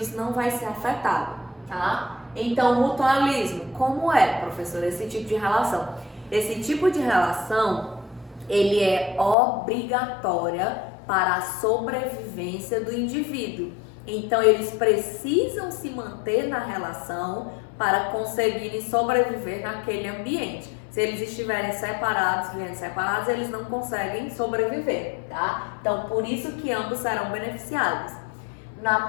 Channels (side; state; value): right; drops out; at 9.3 s